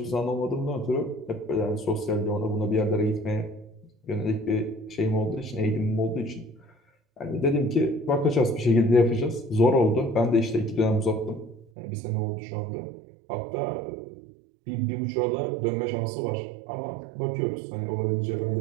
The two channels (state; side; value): drops out; left; at 11.7 s